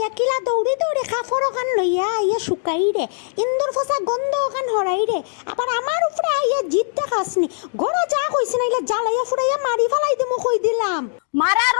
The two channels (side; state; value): right; silent; digital silence